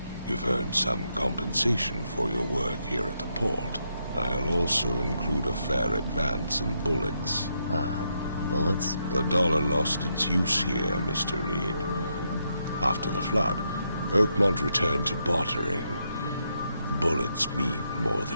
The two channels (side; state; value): both; inverted; correlation -0.80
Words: you've earned some compensation for your work here at the port. I'll also include a fair advance in bullets. Bullets? The dollar lost its use here, Mr. Reed. After the flood, Oakmont returned to bartering. Bullets mean more